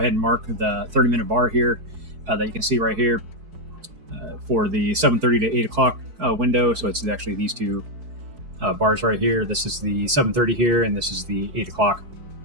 and mark the 30-minute bar here that you can see right here for the 7:30 to 8 o'clock window. So it's actually these two bars right here. This is the 7:30 here, and this is the 8 o'clock.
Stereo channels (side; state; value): left; late; 4.7 ms